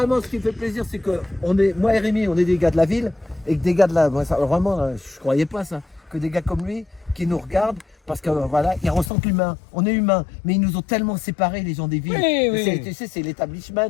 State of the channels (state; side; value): drops out; right; at 9.1 s